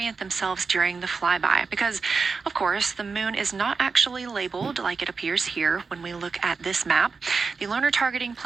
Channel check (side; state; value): left; quieter; 4.8 dB